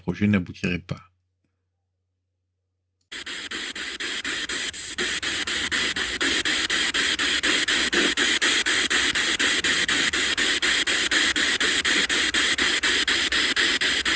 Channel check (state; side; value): identical; both; correlation 1.00